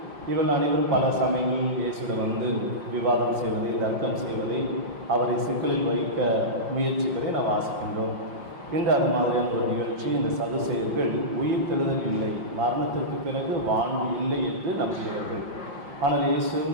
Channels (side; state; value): left; late; 5.6 ms